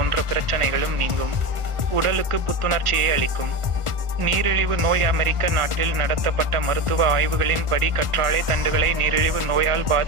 பிரச்சனைகளும் நீங்கும். உடலுக்கு புத்துணர்ச்சியை அளிக்கும். நீரிழிவு நோய். அமெரிக்க நாட்டில் நடத்தப்பட்ட மருத்துவ ஆய்வுகளின் படி கற்றாழை தண்டுகளை நீரிழிவு நோயால்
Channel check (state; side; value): late; left; 1.5 ms